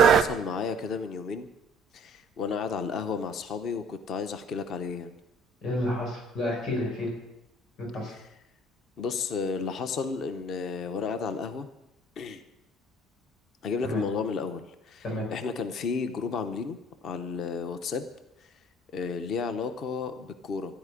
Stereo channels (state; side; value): normal; both; correlation 0.53